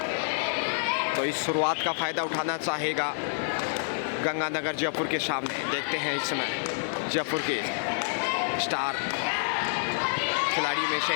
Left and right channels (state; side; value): silent; right; digital silence